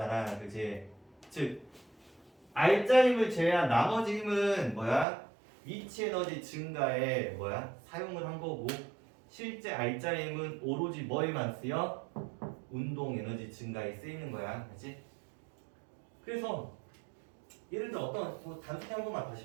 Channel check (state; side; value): drops out; left; at 5.1 s